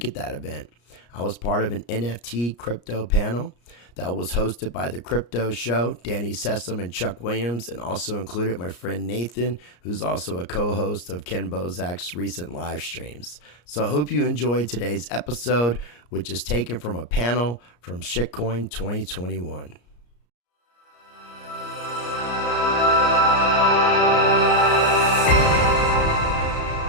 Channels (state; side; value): late; right; 34 ms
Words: at that event. I was part of an NFT crypto panel that was hosted by The Crypto Show, Danny Sessom and Chuck Williams, and also included my friend Nathan, who's also a co-host of Ken Bozak's recent live streams. So I hope you enjoyed today's episode, which is taken from a panel from Shitcoin 2021.